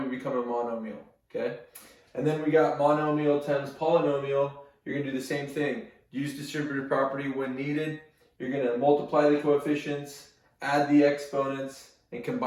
become a monomial. Okay? And then we got monomial times polynomial. You're going to do the same thing. Use distributive property when needed. You're going to multiply the coefficients, add the exponents, and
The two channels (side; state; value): both; identical; correlation 1.00